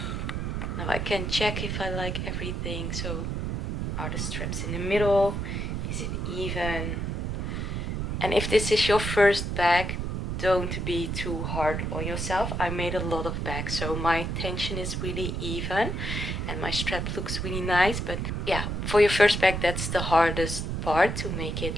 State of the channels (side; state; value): right; noise; rumble, 2 dB below the sound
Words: now I can check if I like everything. So are the straps in the middle, is it even? And if this is your first bag, don't be too hard on yourself. I made a lot of bags, so my tension is really even and my strap looks really nice. But yeah, for your first bag, that's the hardest part, to make it